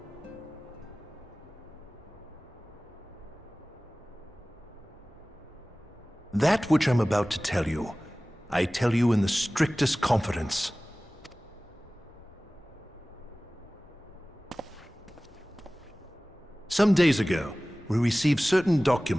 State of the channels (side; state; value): both; normal; correlation 0.98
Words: That which I'm about to tell you, I tell you in the strictest confidence. Some days ago, we received certain